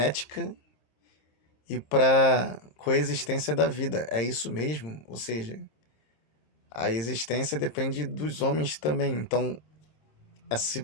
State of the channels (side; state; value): right; late; 26 ms